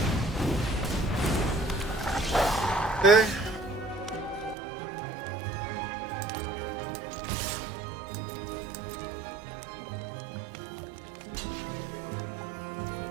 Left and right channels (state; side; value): drops out; left; at 4.5 s